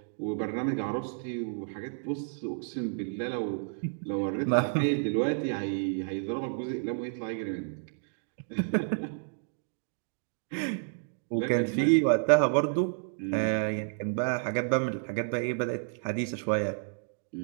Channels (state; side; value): silent; left; digital silence